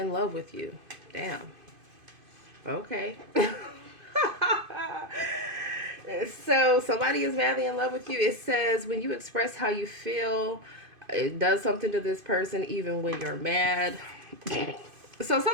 love with you. Damn. Okay. So, somebody is madly in love with you. It says, when you express how you feel, it does something to this person even when you're mad. So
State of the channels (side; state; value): left; late; 2.5 ms